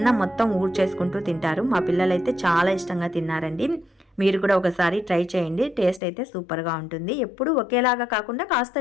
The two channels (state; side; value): drops out; right; at 6.0 s